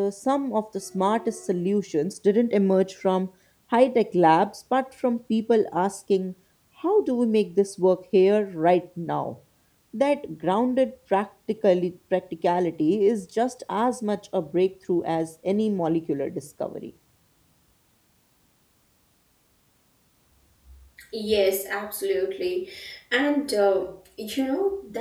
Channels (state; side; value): identical; both; correlation 1.00